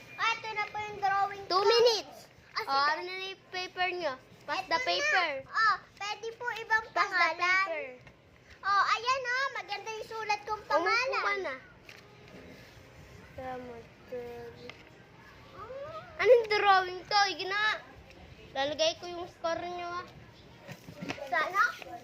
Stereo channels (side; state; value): both; identical; correlation 1.00